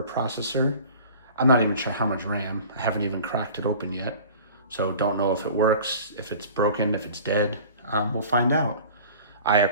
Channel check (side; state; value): both; inverted; correlation -0.43